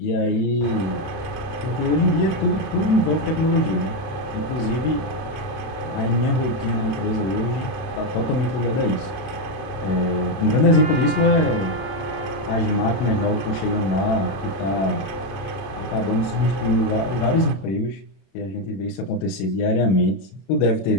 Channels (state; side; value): late; right; 31 ms